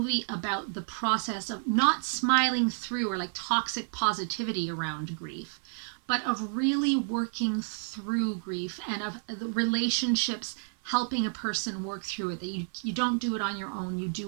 about the process of not smiling through, or like toxic positivity around grief, but of really working through grief, and of the relationships helping a person work through it, that you don't do it on your own, you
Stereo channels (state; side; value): silent; left; 55 dB below the other